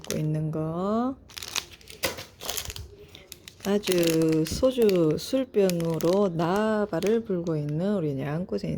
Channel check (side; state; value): both; identical; correlation 1.00